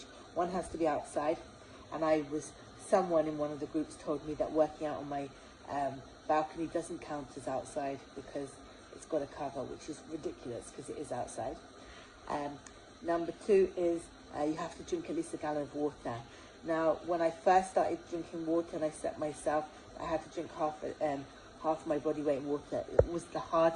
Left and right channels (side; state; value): both; identical; correlation 1.00